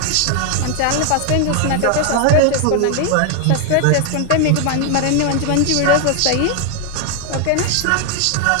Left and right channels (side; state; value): both; different; correlation 0.00